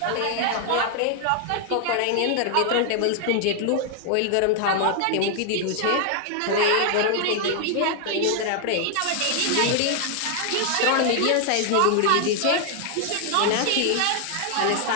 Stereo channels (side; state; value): both; different; correlation 0.00